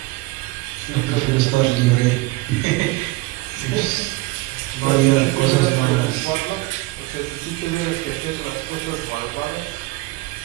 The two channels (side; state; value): left; quieter; 21.7 dB